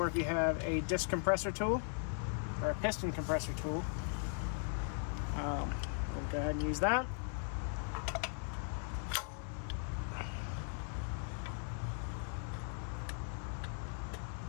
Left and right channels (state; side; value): silent; right; 52 dB below the other